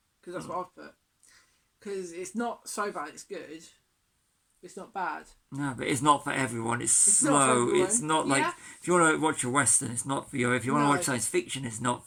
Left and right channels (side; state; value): both; identical; correlation 1.00